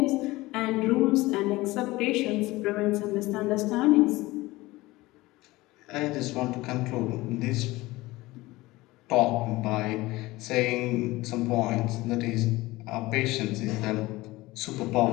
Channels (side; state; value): right; quieter; 19.6 dB